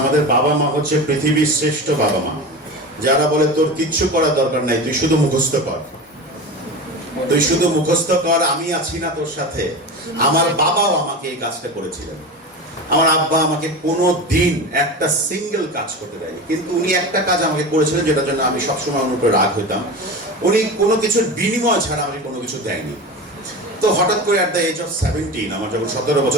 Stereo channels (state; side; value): normal; both; correlation 0.28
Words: আমাদের বাবা মা হচ্ছে পৃথিবীর শ্রেষ্ঠ বাবা মা, যারা বলে তোর কিচ্ছু করার দরকার নাই, তুই শুধু মুখস্থ কর, তুই শুধু মুখস্থ কর, আমি আছি না তোর সাথে। আমার বাবাও আমাকে এই কাজটা করেছিলেন। আমার আব্বা আমাকে কোনো দিন একটা সিঙ্গেল কাজ করতে দেয়নি, কিন্তু উনি একটা কাজ আমাকে করেছিলেন যেটার জন্য আমি সবসময় ওনার উপরে রাগ হইতাম। উনি কোনো কিছুর বিনিময় ছাড়া আমাকে কোনো কিছু দেয়নি। তো হঠাৎ করে অ্যাট দ্য এজ অফ 17, আমার যখন 17